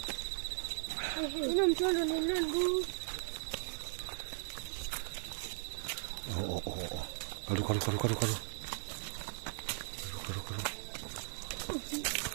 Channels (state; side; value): silent; left; digital silence